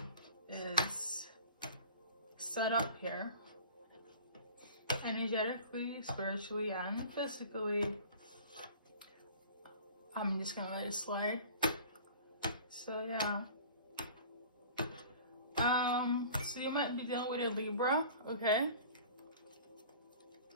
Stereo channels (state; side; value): inverted; both; correlation -0.43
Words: is set up here, energetically, spiritually, and physically, I'm just gonna let it slide. So yeah. So you might be dealing with a Libra, okay?